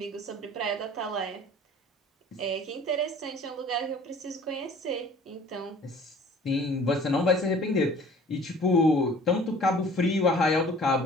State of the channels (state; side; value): normal; both; correlation 0.49